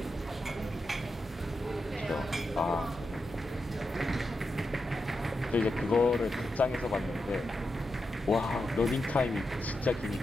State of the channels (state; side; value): normal; both; correlation 0.87